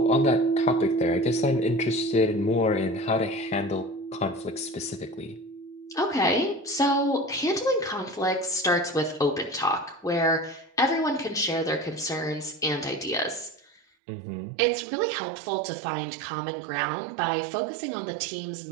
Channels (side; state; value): left; drops out; at 13.8 s